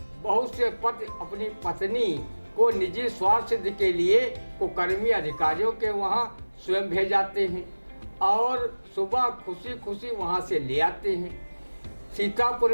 बहुत से पति अपनी पत्नी को निजी स्वार्थ सिद्धि के लिए कुकर्मी अधिकारियों के वहां स्वयं भेज जाते हैं और सुबह खुशी खुशी वहां से ले आते हैं। सीतापुर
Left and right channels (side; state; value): both; inverted; correlation -1.00